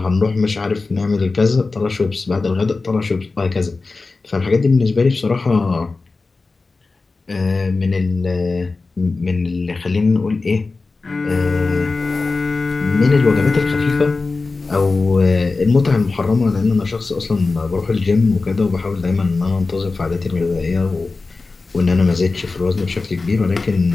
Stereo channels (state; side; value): quieter; right; 3.8 dB